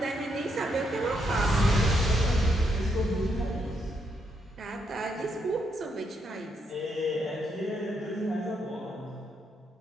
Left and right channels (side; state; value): both; normal; correlation 0.77